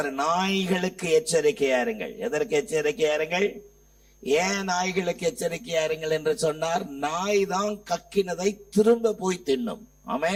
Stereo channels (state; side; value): identical; both; correlation 1.00